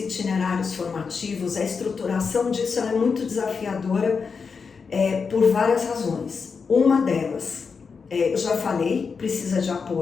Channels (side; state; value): right; quieter; 5.4 dB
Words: formativos, a estruturação disso é muito desafiadora por várias razões. Uma delas, eu já falei, precisa de